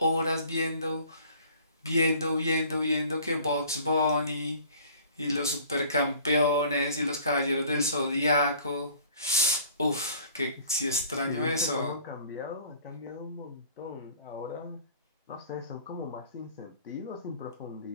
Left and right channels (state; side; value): inverted; both; correlation -0.51